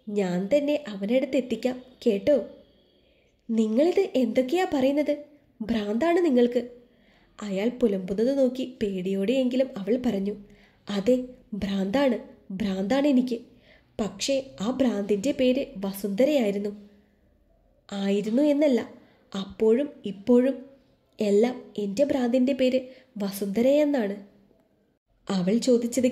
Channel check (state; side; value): identical; both; correlation 1.00